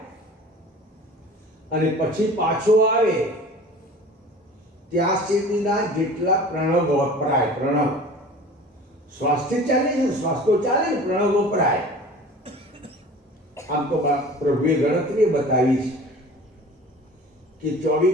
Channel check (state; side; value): normal; both; correlation 0.42